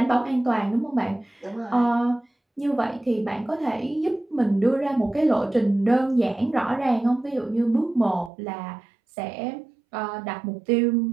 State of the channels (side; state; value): left; drops out; at 8.3 s